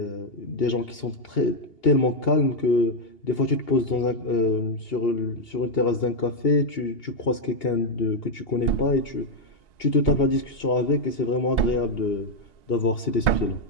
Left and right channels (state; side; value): late; right; 2.8 ms